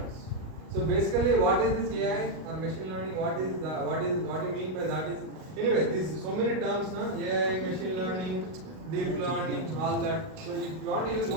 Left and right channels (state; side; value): late; left; 38 ms